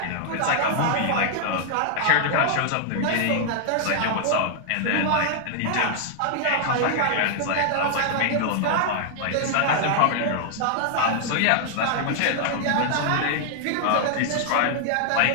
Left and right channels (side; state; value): both; different; correlation -0.01